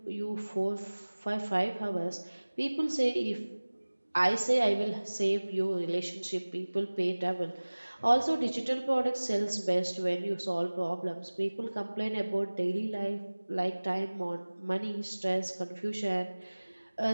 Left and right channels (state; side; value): inverted; both; correlation -1.00